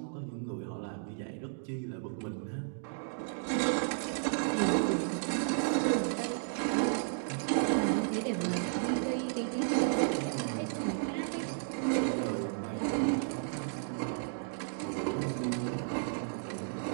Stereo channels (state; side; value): silent; left; digital silence